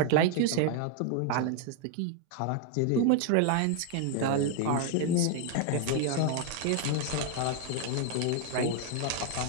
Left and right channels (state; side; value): different; both; correlation 0.00